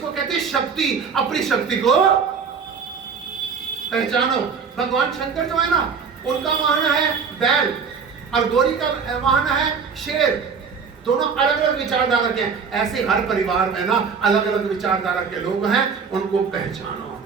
कहते हैं शक्ति, अपनी शक्ति को पहचानो। भगवान शंकर जो है ना, उनका वाहन है बैल और गौरी का वाहन है शेर, दोनों अलग अलग विचारधारा के हैं। ऐसे हर परिवार में ना अलग अलग विचारधारा के लोग हैं, उनको पहचानो।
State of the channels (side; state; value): left; quieter; 5.9 dB